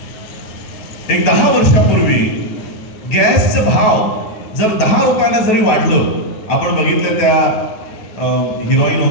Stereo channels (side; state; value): right; late; 9.3 ms